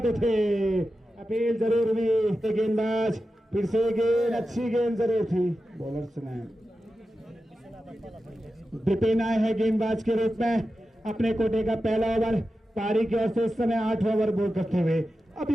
थे, अपील जरूर हुई। गेंदबाज फिर से गेंद, अच्छी गेंद जरूर थी। बॉलर्स ने विपिन आए हैं गेंदबाज के रूप में, अपने कोटे का पहला ओवर पारी की ओर से इस समय 8 ओवर बोल करते हुए अब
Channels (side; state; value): both; normal; correlation 0.92